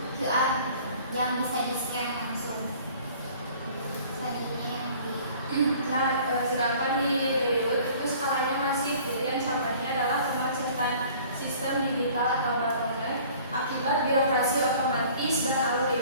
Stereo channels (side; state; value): both; inverted; correlation -0.51